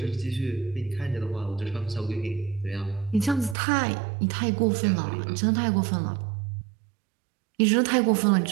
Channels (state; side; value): drops out; left; at 3.6 s